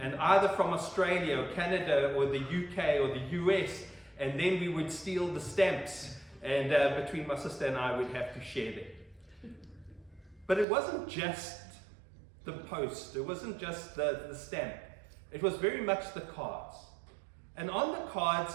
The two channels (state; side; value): drops out; left; at 10.7 s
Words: either from Australia or Canada or the UK or the US, and then we would steal the stamps, and between my sister and I, we'd have to share them. But it wasn't just the post, it wasn't just the stamp. It was very much the cards. And on the cards,